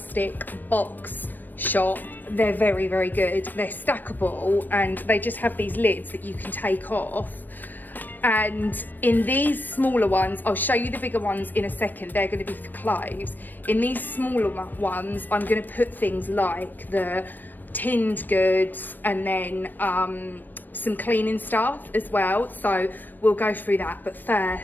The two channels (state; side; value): late; right; 0.090 ms